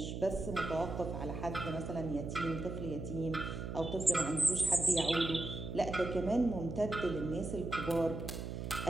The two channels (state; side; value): noise; right; hum, 5 dB below the sound